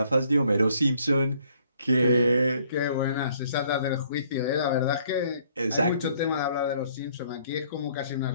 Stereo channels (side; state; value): both; inverted; correlation -0.64